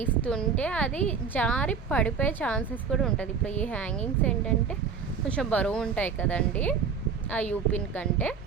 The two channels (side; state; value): left; quieter; 6.0 dB